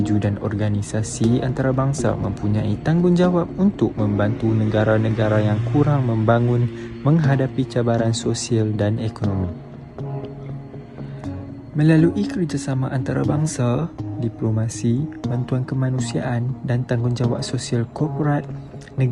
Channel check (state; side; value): identical; both; correlation 1.00